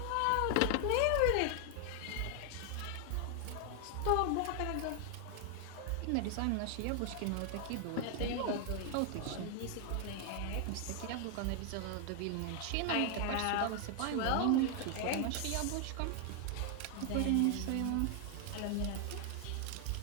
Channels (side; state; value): both; different; correlation 0.00